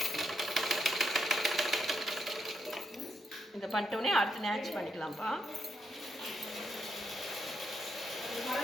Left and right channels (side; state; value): both; normal; correlation 0.80